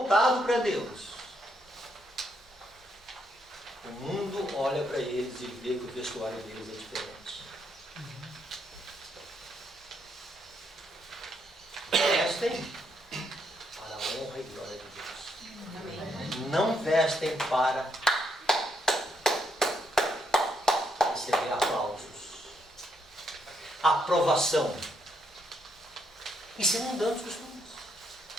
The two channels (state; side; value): normal; both; correlation 0.76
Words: para Deus, o mundo olha para eles e vê que o vestuário deles é diferente. Vestem para a honra e glória de Deus. Não vestem para receber aplausos, aprovação. Isso é mundano os costumes.